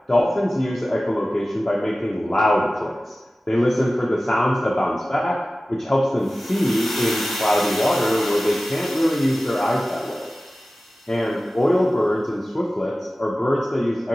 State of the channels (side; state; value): both; normal; correlation 0.96